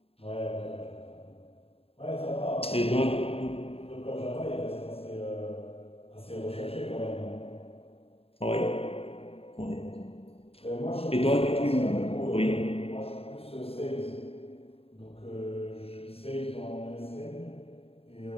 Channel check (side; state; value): right; late; 0.28 ms